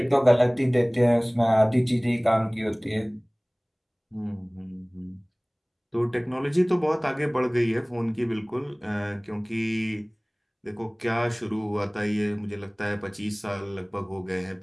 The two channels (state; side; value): identical; both; correlation 1.00